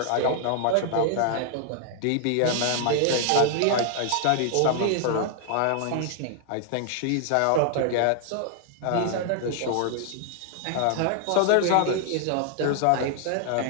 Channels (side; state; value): both; different; correlation 0.00